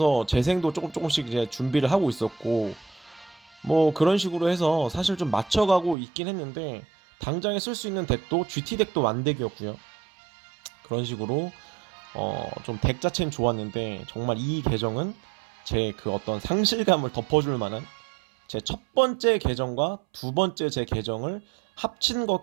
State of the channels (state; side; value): drops out; left; at 6.0 s